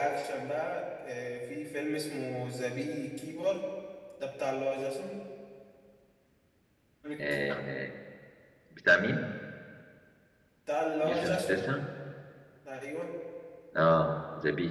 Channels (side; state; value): both; identical; correlation 1.00